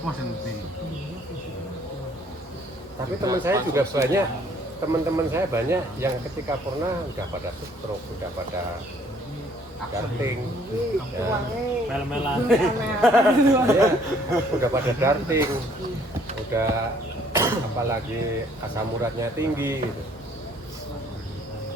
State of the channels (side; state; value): both; normal; correlation 0.61